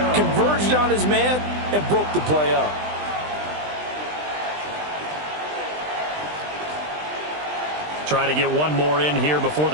converged on his man, and broke the play up. Trying to get one more in here before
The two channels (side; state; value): left; late; 20 ms